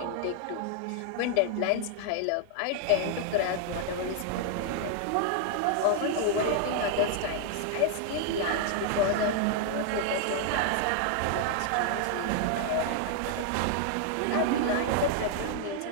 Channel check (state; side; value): different; both; correlation 0.00